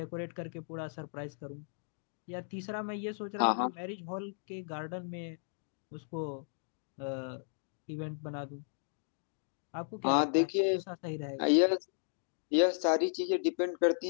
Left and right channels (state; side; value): silent; right; digital silence